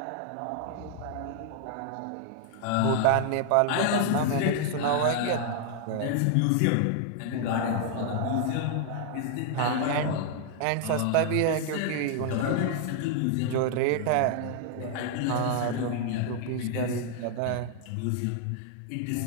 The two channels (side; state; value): both; different; correlation 0.00